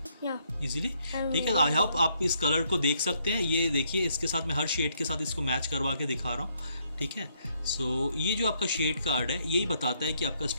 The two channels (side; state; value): both; inverted; correlation -0.72